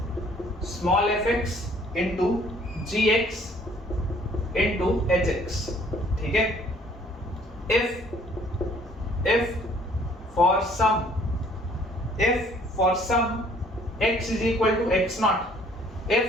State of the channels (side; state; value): both; normal; correlation 0.59